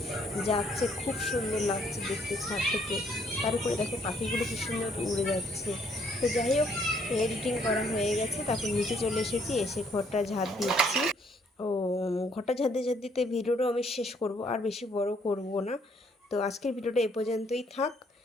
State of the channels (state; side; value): normal; both; correlation 0.67